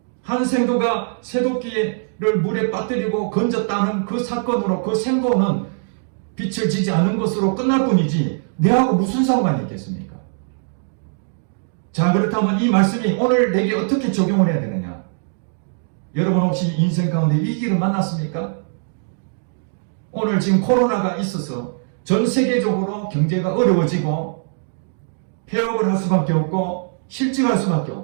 한 생도가 새도끼를 물에 빠뜨리고 건졌다는 그 사건으로 그 생도는 빛을 지지 않은 것으로 끝날 뿐이지 내하고 무슨 상관이 있겠습니까? 자, 그렇다면 이 말씀이 오늘 내게 어떻게 적용을 해야 되느냐? 여러분 혹시 인생 가운데 위기를 만났습니까? 오늘 지금 코로나가 있어서 전 세계적으로 경제가 어려워지고 폐업을 할 수밖에 없고 실직할 수밖에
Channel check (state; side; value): silent; left; digital silence